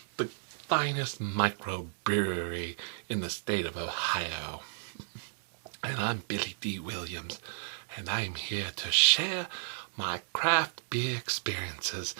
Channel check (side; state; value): left; silent; digital silence